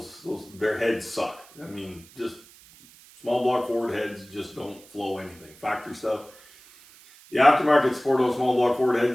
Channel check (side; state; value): right; noise; hiss, 24 dB below the sound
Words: their heads suck. I mean, just small block Ford heads just don't flow anything. Factory stuff. The aftermarket support on small block Ford